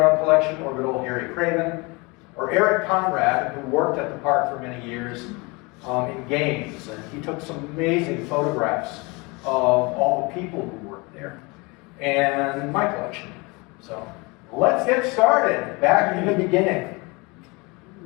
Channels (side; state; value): right; quieter; 27.0 dB